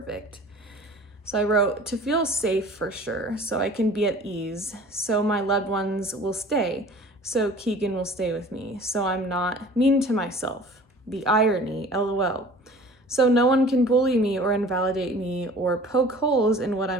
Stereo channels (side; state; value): both; normal; correlation 0.46